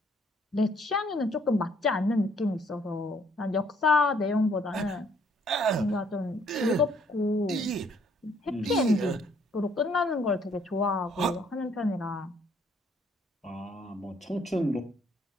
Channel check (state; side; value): normal; both; correlation 0.64